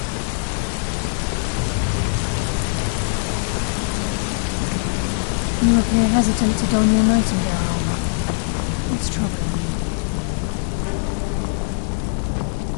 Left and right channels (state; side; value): silent; right; 60 dB below the other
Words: You appear hesitant to don your Nightingale armor. What's troubling you?